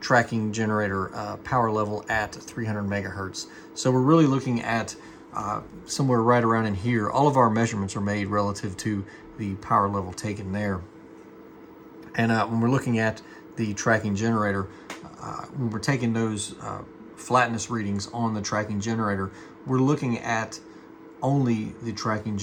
generator power level at 300 megahertz. So we're really looking at somewhere right around in here. All of our measurements are made relative to the power level taken there. And when we're looking at the tracking generator, when we're taking those flatness readings on the tracking generator, we're looking at only the tracking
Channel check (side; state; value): both; identical; correlation 1.00